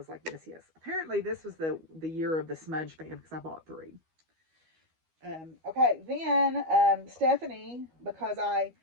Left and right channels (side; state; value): left; late; 12 ms